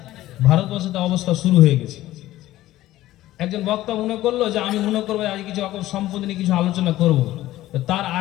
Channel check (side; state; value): right; quieter; 15.3 dB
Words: ভারতবর্ষে তো অবস্থা শুরু হয়ে গেছে। একজন বক্তা মনে করলো যে আমি মনে করবো আজ কিছু সম্পত্তি নিয়ে কিছু আলোচনা করব। তার